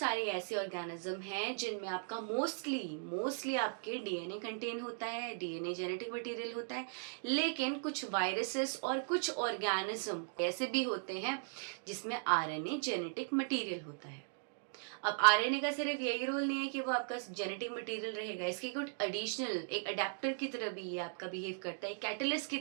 ऐसे ऑर्गेनिज्म हैं जिनमें आपका मोस्टली आपके डीएनए कंटेन होता है, डीएनए जेनेटिक मटेरियल होता है। लेकिन कुछ वायरसेस और कुछ ऑर्गेनिज्म ऐसे भी होते हैं जिसमें आरएनए जेनेटिक मटेरियल होता है। अब आरएनए का सिर्फ यही रोल नहीं है कि वो आपका जेनेटिक मटेरियल रहेगा, इसकी कुछ एडिशनल एक अडेप्टर की तरह भी ये आपका बिहेव करता है, कैटलिस्ट की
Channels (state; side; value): silent; left; digital silence